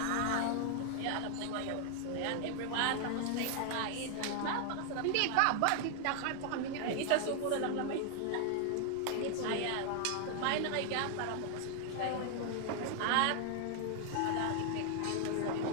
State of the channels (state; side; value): different; both; correlation 0.00